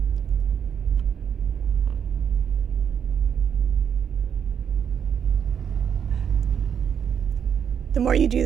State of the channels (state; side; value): quieter; left; 8.0 dB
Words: The more you do